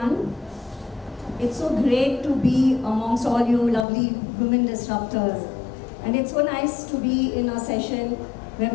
It's so great to be amongst all you lovely women disruptors. And it's so nice to be in a session where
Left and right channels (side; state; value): right; drops out; at 3.9 s